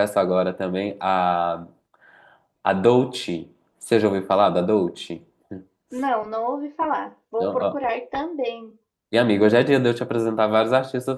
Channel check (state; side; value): identical; both; correlation 1.00